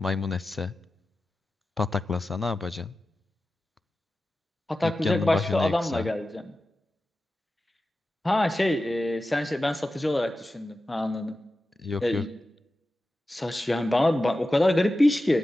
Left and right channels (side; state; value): both; normal; correlation 0.93